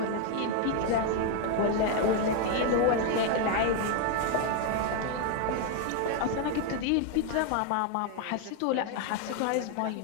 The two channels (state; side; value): different; both; correlation 0.01